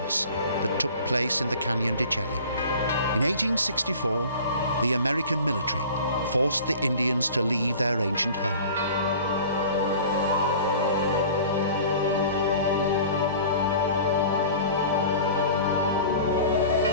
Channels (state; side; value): inverted; both; correlation -0.42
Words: that took place in the Canyon de Chelly. In 1864, the American military forced the Indians to leave their ancient home.